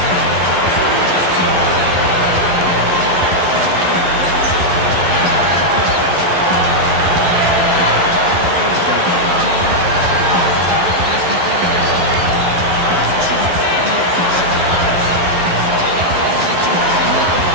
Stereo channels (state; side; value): late; left; 11 ms